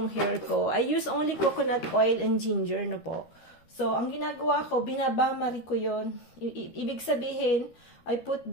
hair ko. I use only coconut oil and ginger, no po. So, ang ginagawa ko, binabamari ko yun. Ibig sabihin, I put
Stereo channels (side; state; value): right; late; 13 ms